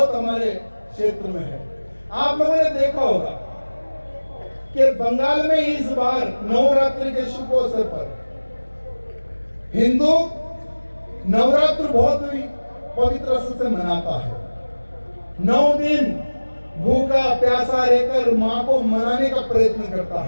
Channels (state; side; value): inverted; both; correlation -1.00